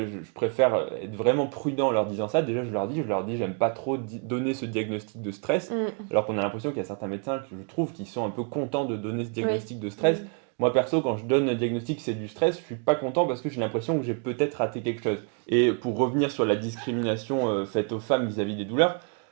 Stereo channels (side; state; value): left; quieter; 37.4 dB